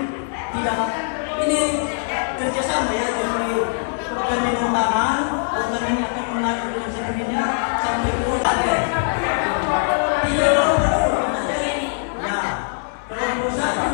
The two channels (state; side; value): silent; right; digital silence